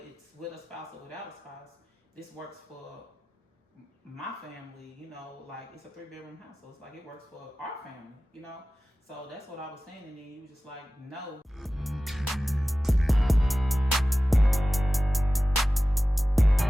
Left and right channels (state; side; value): normal; both; correlation 0.96